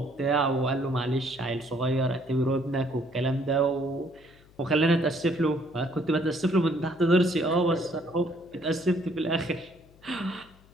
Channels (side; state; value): left; noise; hum, 27 dB below the sound